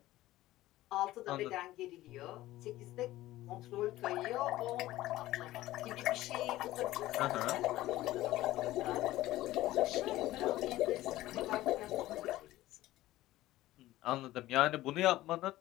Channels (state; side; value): quieter; right; 16.2 dB